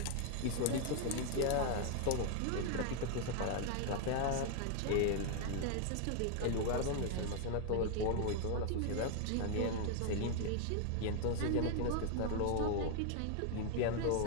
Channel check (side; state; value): both; different; correlation 0.00